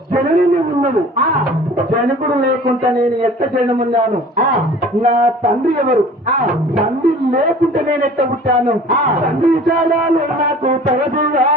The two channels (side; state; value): both; normal; correlation 0.45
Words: జనని ఉన్నది. జనకుడు లేకుండా నేను ఎట్ట జనమున్నాను? నా తండ్రి ఎవరు? తండ్రి లేకుంటే నేను ఎట్ట పుట్టాను? తండ్రి చాలాలు నాకు తగదుగా